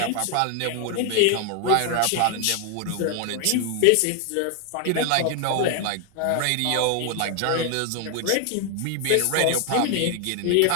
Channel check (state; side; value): different; both; correlation 0.00